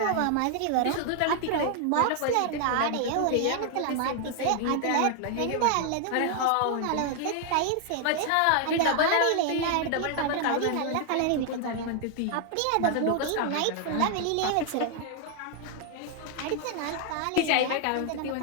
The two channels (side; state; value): both; different; correlation 0.00